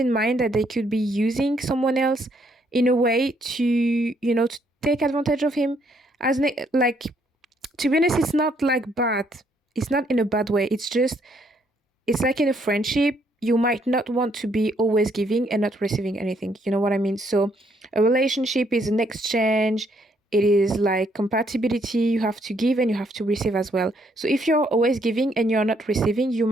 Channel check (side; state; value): both; normal; correlation 0.70